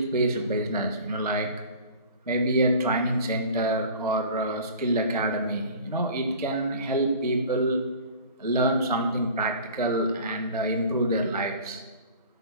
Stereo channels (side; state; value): both; inverted; correlation -0.42